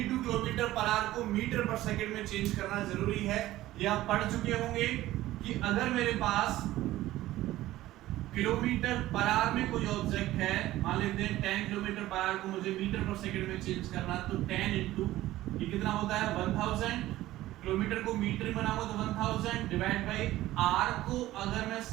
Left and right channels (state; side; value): quieter; left; 15.7 dB